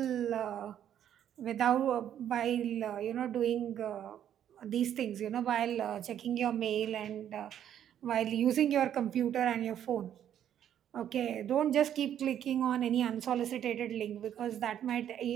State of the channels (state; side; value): quieter; left; 10.1 dB